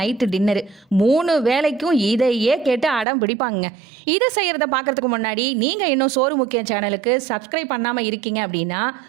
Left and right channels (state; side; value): drops out; left; at 3.1 s